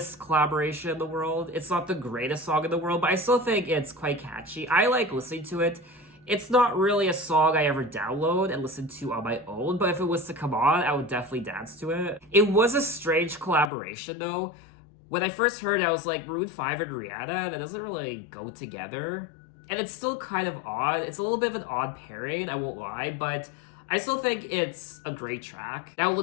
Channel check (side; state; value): right; drops out; at 13.7 s